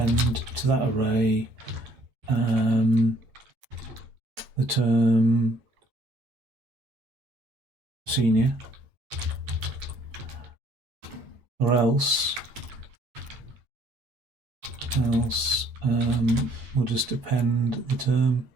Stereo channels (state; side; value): late; left; 8.6 ms